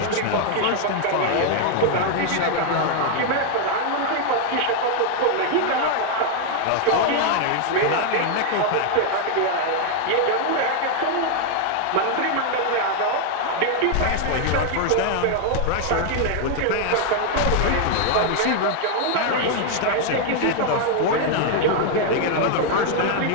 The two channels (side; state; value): both; different; correlation 0.00